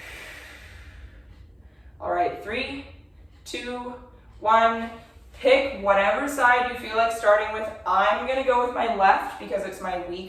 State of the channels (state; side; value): identical; both; correlation 1.00